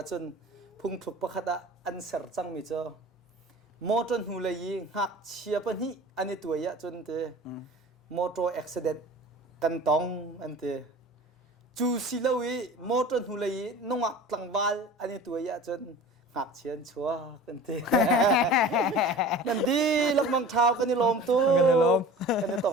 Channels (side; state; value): both; normal; correlation 0.40